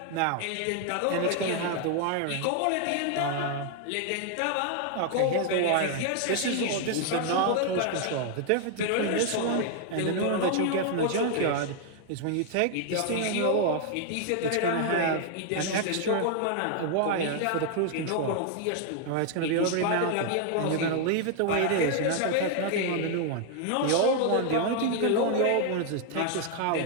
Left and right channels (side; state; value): both; different; correlation 0.00